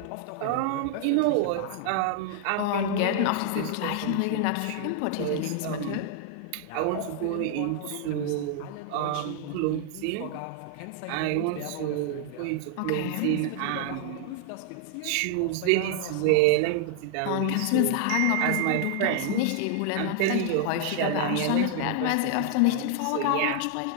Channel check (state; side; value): different; both; correlation 0.00